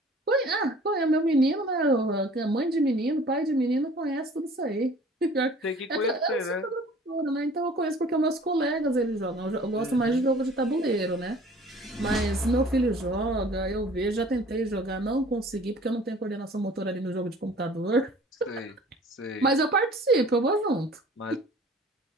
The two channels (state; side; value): normal; both; correlation 0.49